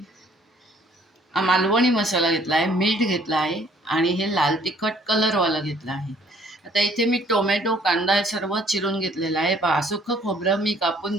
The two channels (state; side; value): normal; both; correlation 0.60